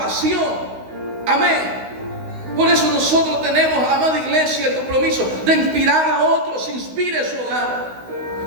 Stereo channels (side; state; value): left; late; 16 ms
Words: Amén. Por eso nosotros tenemos, amada iglesia, el compromiso de inspirar a otros. Inspire su hogar,